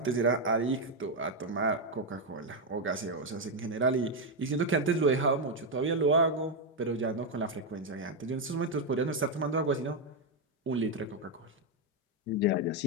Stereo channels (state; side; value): normal; both; correlation 0.03